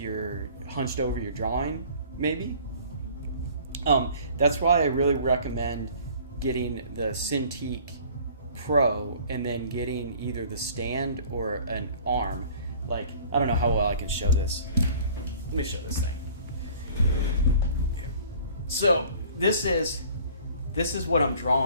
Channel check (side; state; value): both; inverted; correlation -0.50